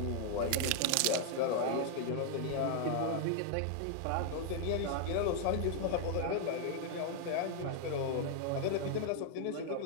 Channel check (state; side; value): different; both; correlation 0.00